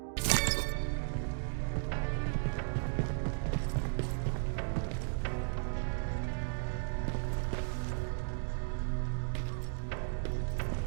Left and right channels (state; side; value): silent; left; digital silence